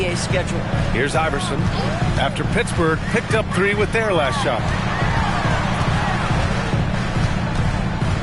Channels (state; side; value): identical; both; correlation 1.00